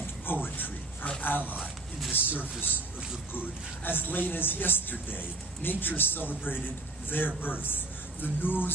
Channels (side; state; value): left; quieter; 3.1 dB